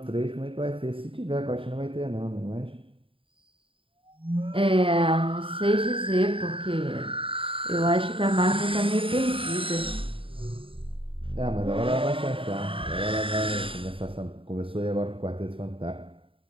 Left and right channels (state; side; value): late; left; 0.26 ms